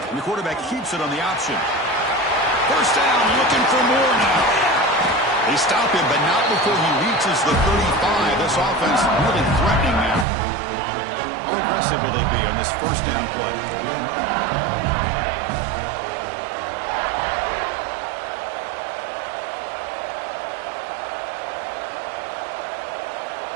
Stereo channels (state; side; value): drops out; left; at 10.2 s